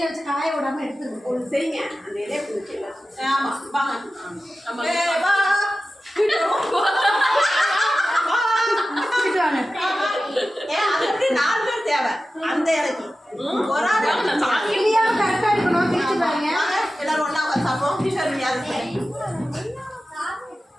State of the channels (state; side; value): normal; both; correlation 0.94